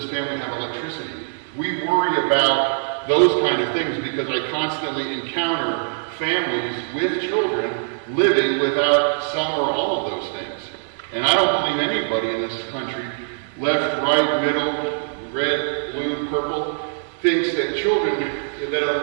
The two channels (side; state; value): left; silent; digital silence